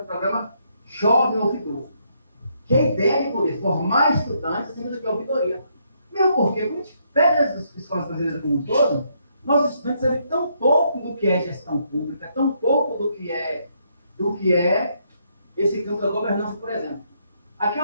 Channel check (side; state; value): both; inverted; correlation -0.74